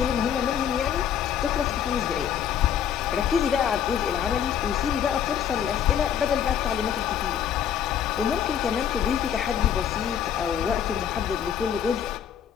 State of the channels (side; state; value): right; quieter; 9.0 dB